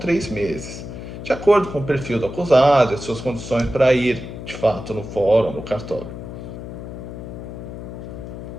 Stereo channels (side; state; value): left; noise; hum, 10 dB below the sound